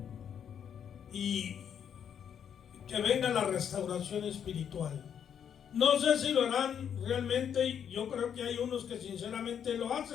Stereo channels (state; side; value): quieter; right; 8.4 dB